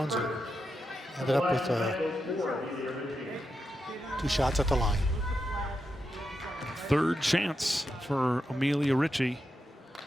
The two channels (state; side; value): normal; both; correlation 0.87